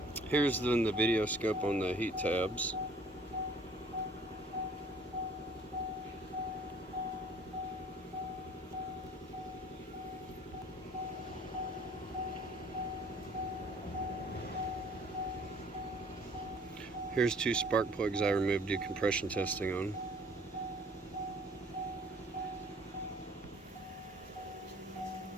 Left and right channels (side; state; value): both; normal; correlation 0.55